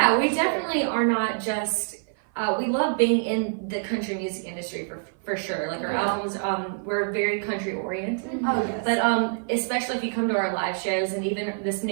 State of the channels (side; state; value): left; silent; 56 dB below the other